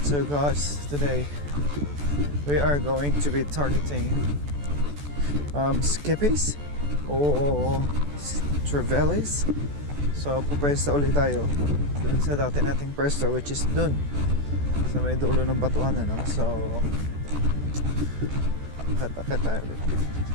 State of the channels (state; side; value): late; left; 14 ms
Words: So guys, today we are going to be targeting skippies o trevallies. So pupwesto ulit tayo dun sa dati nating pwesto, which is dun sa may dulo ng batuan, ano? So akit tayo ulit.